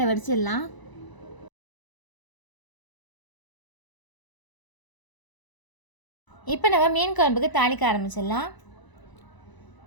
வடிச்சிடலாம். இப்போ நம்ம மீன் குழம்புக்கு தாளிக்க ஆரம்பிச்சிடலாம்.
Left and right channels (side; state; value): right; late; 1.0 ms